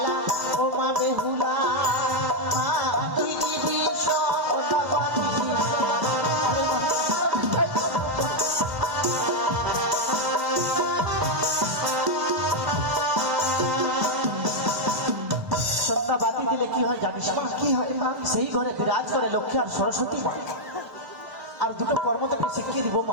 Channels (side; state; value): left; late; 1.0 ms